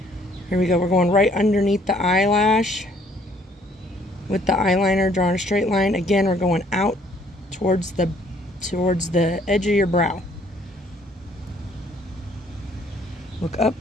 Here we go. We're going right underneath the eyelash with the eyeliner, drawing a straight line. Again, we're going out towards the edge of your brow. Look up.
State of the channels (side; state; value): both; normal; correlation 0.62